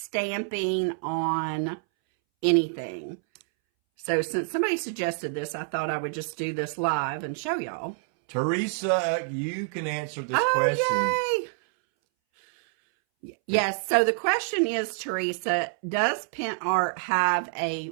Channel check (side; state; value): left; silent; 60 dB below the other